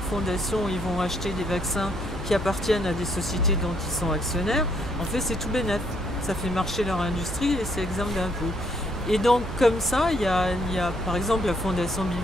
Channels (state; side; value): normal; both; correlation 0.70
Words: fondation ils vont acheter des vaccins qui appartiennent à des sociétés dont ils sont actionnaires, en fait c'est tout bénef. Ça fait marcher leur industrie et c'est exempt d'impôts. Et donc comme ça, il y a par exemple la fondation Bill